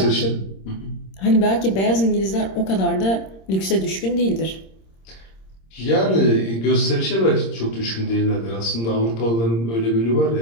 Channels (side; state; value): right; late; 26 ms